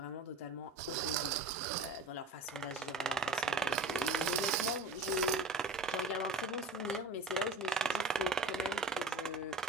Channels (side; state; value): left; quieter; 3.1 dB